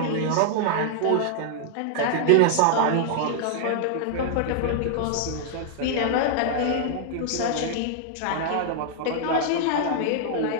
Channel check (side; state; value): both; different; correlation -0.01